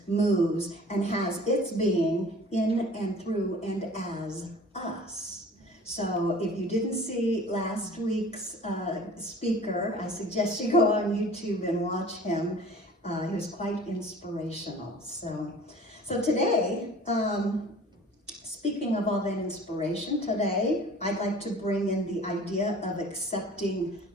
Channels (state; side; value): normal; both; correlation 0.46